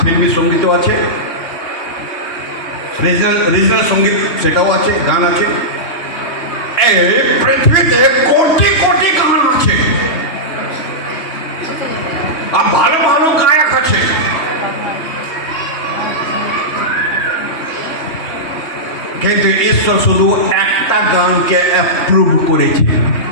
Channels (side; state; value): right; late; 3.2 ms